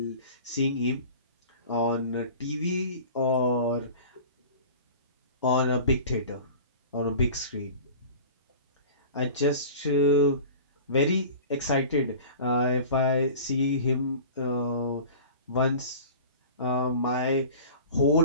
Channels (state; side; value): inverted; both; correlation -0.40